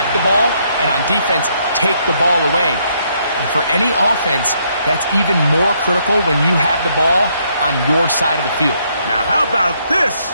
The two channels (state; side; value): inverted; both; correlation -0.72